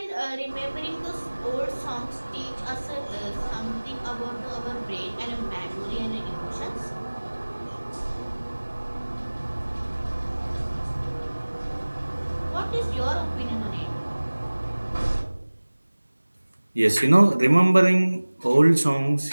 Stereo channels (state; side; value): inverted; both; correlation -1.00